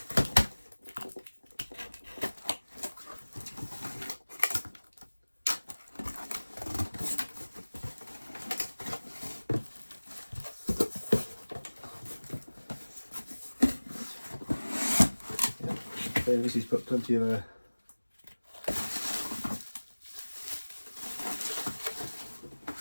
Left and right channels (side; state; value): both; inverted; correlation -1.00